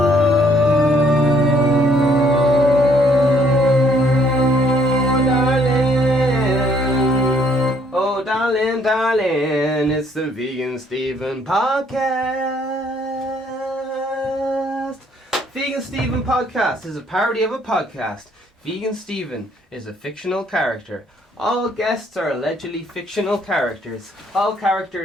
Oh, darling, darling, it's the Vegan Steven podcast. Vegan Steven podcast is a parody of a podcast. Vegan Steven is a fictional character. All guests are allegedly fictional characters. All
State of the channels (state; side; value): normal; both; correlation 0.65